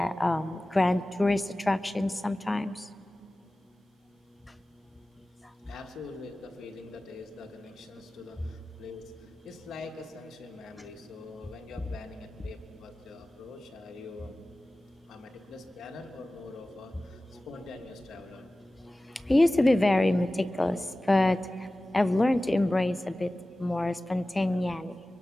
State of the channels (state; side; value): normal; both; correlation 0.96